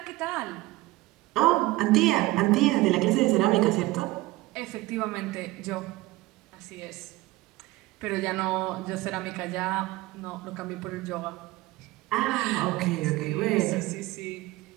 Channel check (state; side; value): quieter; left; 19.2 dB